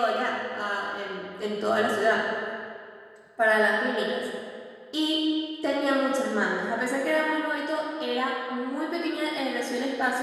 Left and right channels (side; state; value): both; identical; correlation 1.00